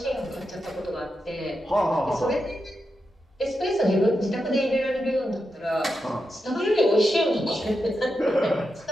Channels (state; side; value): normal; both; correlation 0.87